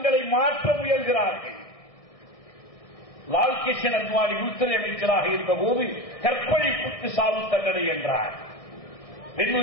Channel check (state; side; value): late; right; 1.6 ms